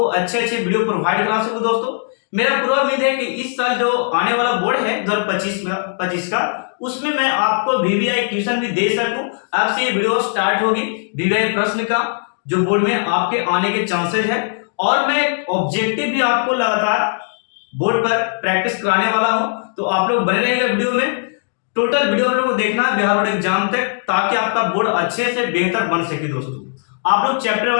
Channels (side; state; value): right; silent; digital silence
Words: अच्छे वीडियो प्रोवाइड करा सकूं। दोस्तों, मेरा पूरा उम्मीद है कि इस साल जो आने वाला बोर्ड है 2025 का, उसमें मैं आपको वीवीआई ट्यूशन भी दे सकूं। अब से ये वीडियो स्टार्ट होगी वीवीआई प्रश्न का, जो बोर्ड में आपके आने के चांसेस है, और मैं ऑब्जेक्टिव भी आपको लगातार बोर्ड पर प्रैक्टिस कराने वाला हूं। तो आप लोग बने रहिएगा वीडियो में। टोटल वीडियो आप लोग को देखना है बिहार बोर्ड एग्जाम तक, ताकि आपका बोर्ड अच्छे से बेहतर बन सके। दोस्तों, आप लोग चैप्टर